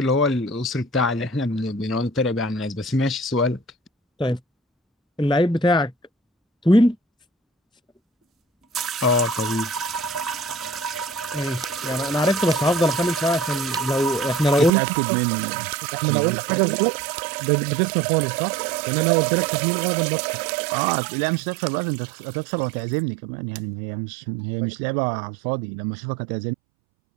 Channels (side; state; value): left; drops out; at 14.7 s